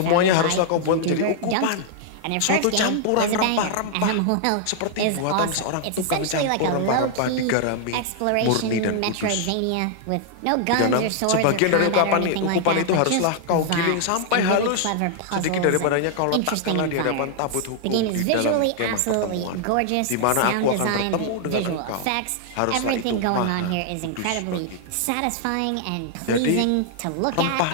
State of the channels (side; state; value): both; different; correlation -0.01